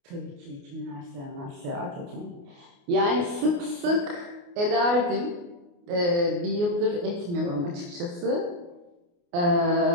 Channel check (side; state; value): left; late; 29 ms